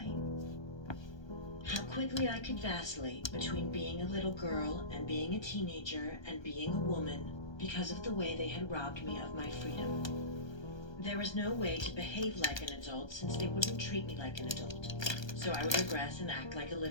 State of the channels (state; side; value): late; right; 1.3 ms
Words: How quickly I could vacillate between being a little girl and being a teenager and being a woman because of the way they had robbed me of my freedom. There was no way to behave like an adult since they wouldn't treat me like an adult. So I would regress and act like a